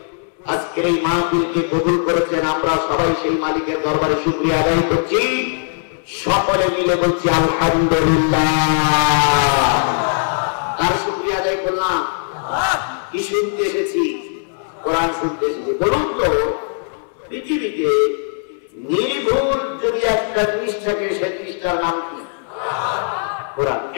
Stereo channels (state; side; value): silent; right; digital silence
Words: আজকে এই মাহফিলকে কবুল করেছেন, আমরা সবাই সেই মালিকের দরবারে শুকরিয়া আদায় করছি। সকলে মিলে বলছি আলহামদুলিল্লাহ। তার শুকরিয়া আদায় করলাম। কি শুনতে এসেছি? কোরআন শুনতে এসেছি। বলুন তো, পৃথিবীতে নির্ভুল যদি একটা জিনিস থাকে, সেই জিনিসটার নাম কি? কোরআন।